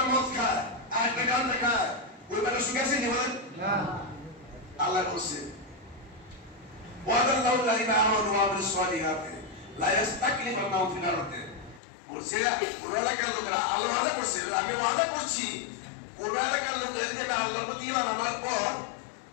মদ খায় আর একটা গান খায়, ওই বেলা সুখে আছে নি বলেন? আল্লাহ বলছে ওয়াদাল্লাহু আলাইহিম আমানু ওয়া আমিলুস সালিহাতি লা ইস্তাকলিফান্নাহুম ফিল আরদি। বলছে কোন এলাকার লোকেরা আল্লাহ ওয়াদা করছে, আমি ওয়াদা করছি কোন এলাকার লোকেরা যদি আল্লাহর প্রতি ঈমান আনার পর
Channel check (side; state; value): right; drops out; at 11.8 s